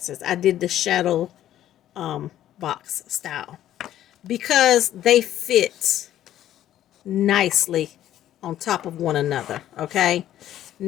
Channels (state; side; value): quieter; right; 12.3 dB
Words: I did the shadow box style, because they fit nicely on top of one another. Okay,